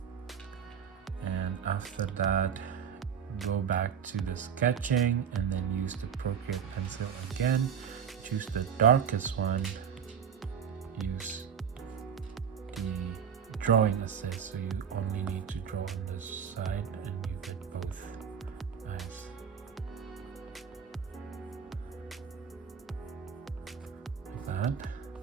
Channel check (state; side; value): quieter; left; 7.7 dB